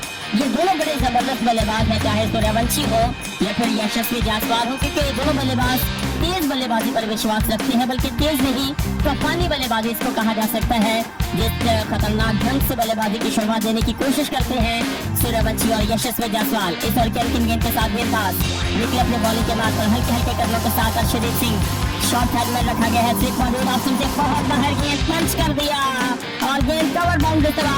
ये दोनों बड़े जबरदस्त बल्लेबाज हैं, चाहे सूर्यवंशी हो या फिर यशस्वी जायसवाल हो, क्योंकि ये दोनों बल्लेबाज तेज बल्लेबाजी पर विश्वास रखते हैं, बल्कि तेज नहीं तूफानी बल्लेबाजी इसको कहा जा सकता है, जिस खतरनाक ढंग से बल्लेबाजी की शुरुआत देने की कोशिश करते हैं सूर्यवंशी और यशस्वी जायसवाल। इस ओवर के अंतिम गेंद के साथ गेंदबाज निकले अपने बॉलिंग के मार्ग पर हल्के हल्के कदमों के साथ अर्शदीप सिंह शॉर्ट हेड में रखा गया है, स्लिप मौजूद ऑप्शन से बहुत बाहर गेंद पंच कर दिया और गेंद कवर बाउंड्री से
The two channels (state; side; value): identical; both; correlation 1.00